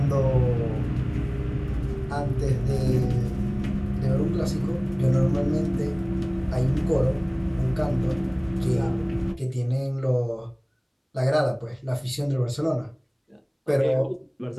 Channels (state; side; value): identical; both; correlation 1.00